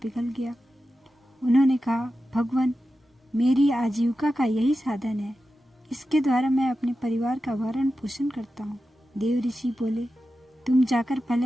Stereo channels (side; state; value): both; normal; correlation 0.92